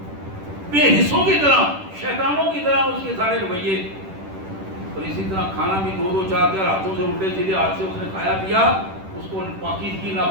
بے حصوں کی طرح شیطانوں کی طرح اس کے سارے رویے. اور اسی طرح کھانا بھی دو چار ہاتھوں سے الٹے سیدھے ہاتھ سے اس نے کھایا پیا، اس کو پاکیزگی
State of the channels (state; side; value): late; left; 10 ms